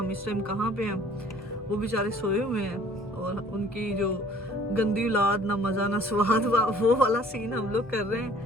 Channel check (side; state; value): both; normal; correlation 0.54